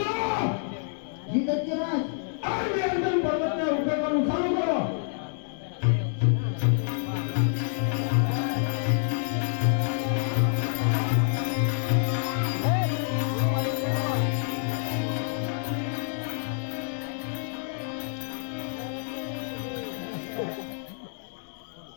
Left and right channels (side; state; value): right; silent; 60 dB below the other